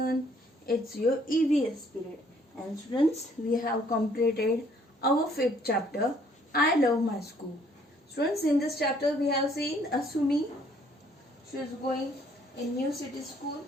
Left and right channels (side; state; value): both; normal; correlation 0.63